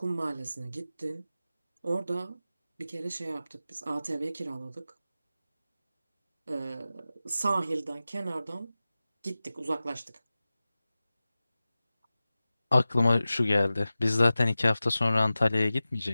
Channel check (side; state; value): both; inverted; correlation -0.95